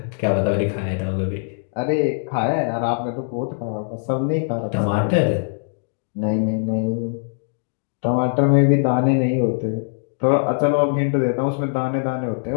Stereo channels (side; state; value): right; silent; 64 dB below the other